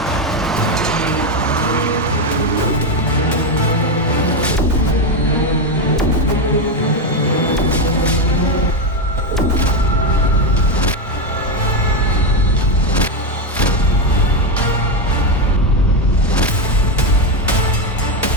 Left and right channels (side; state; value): both; normal; correlation 0.09